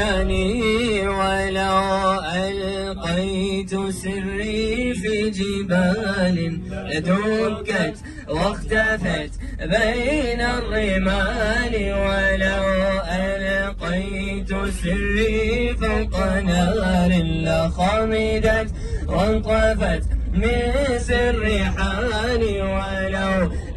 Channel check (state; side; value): identical; both; correlation 1.00